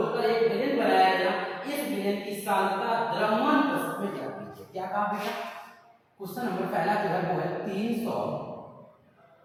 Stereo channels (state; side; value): identical; both; correlation 1.00